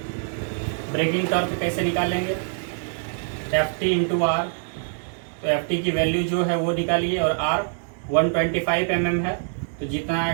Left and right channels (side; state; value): left; silent; digital silence